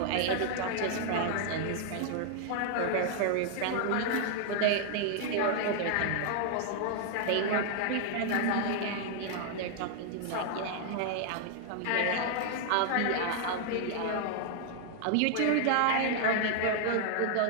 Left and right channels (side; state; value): both; different; correlation 0.00